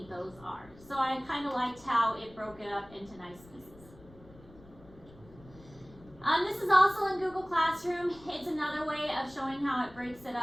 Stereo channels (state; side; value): noise; left; rumble, 22 dB below the sound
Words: those are. So I kind of liked how it broke it up into nice pieces. This is also in Google Classroom. It's another way of showing how it breaks it